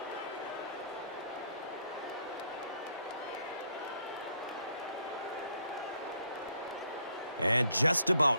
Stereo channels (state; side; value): inverted; both; correlation -0.69